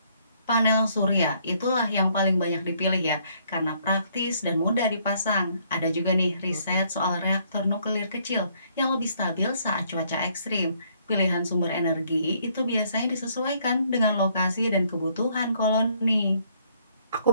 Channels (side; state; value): both; inverted; correlation -0.67